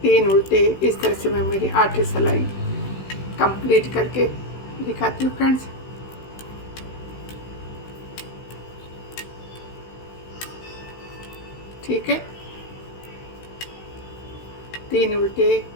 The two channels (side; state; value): right; late; 16 ms